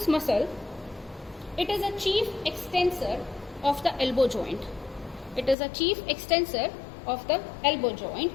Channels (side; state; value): right; drops out; at 5.6 s